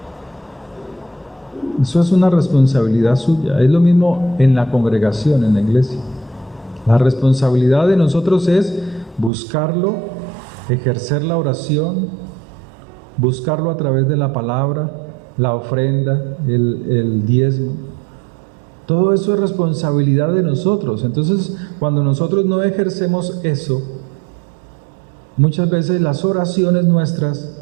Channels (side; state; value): left; drops out; at 9.3 s